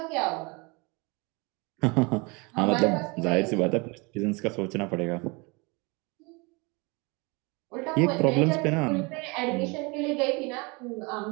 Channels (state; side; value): quieter; left; 28.3 dB